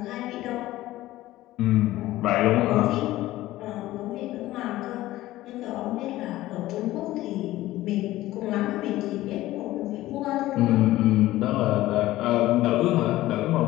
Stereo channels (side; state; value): right; quieter; 16.1 dB